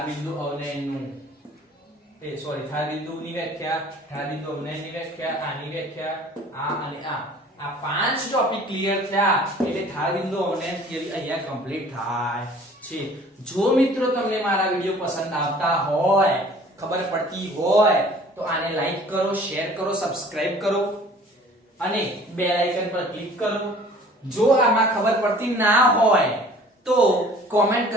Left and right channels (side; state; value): both; normal; correlation 0.50